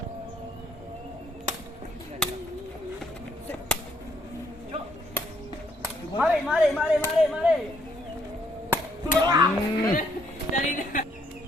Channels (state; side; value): normal; both; correlation 0.69